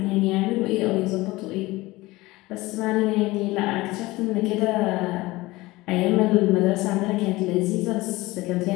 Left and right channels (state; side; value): quieter; right; 20.1 dB